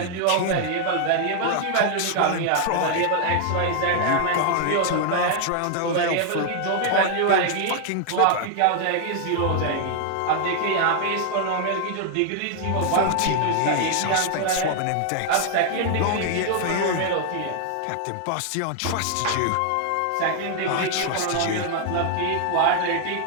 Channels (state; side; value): different; both; correlation 0.00